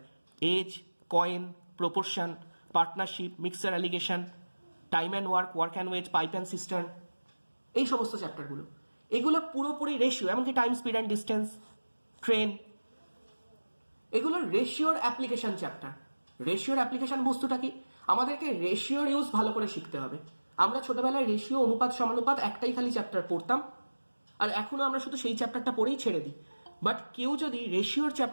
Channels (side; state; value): both; inverted; correlation -1.00